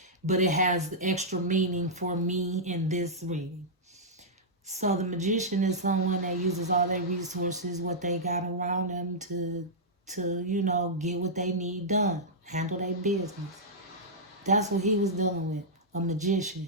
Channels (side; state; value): both; normal; correlation -0.10